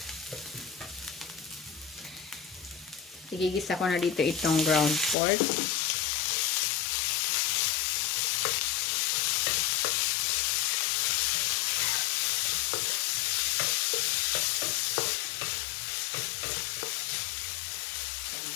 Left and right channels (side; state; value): right; drops out; at 5.2 s